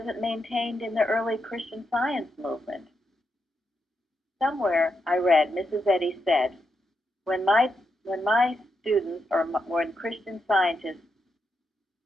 maintained in the early Christian Science movement. Somewhere I read, Mrs. Eddy said, when my students or when Christian scientists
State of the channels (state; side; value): normal; both; correlation 0.83